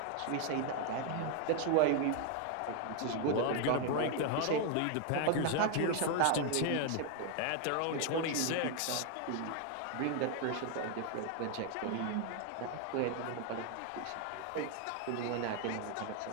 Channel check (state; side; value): different; both; correlation 0.00